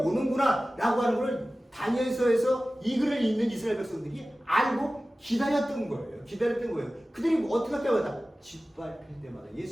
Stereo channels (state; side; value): normal; both; correlation 0.96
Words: 라고 하는 걸 다니엘서에서 이 글을 읽는 이스라엘 백성들이 알고 기다렸던 거예요. 그들이 어떻게 할 때마다 짓밟힐 때마다